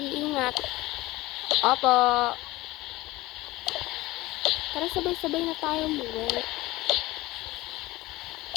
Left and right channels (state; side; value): quieter; right; 19.0 dB